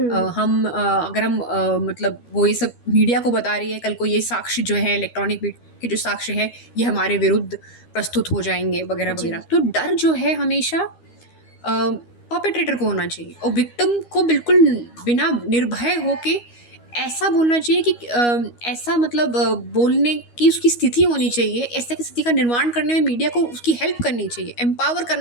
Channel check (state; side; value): late; right; 13 ms